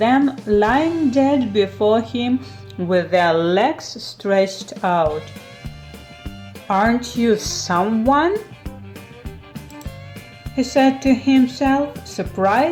lying dead before him with their legs stretched out. "Aren't you someone?" he said to himself,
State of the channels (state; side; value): identical; both; correlation 1.00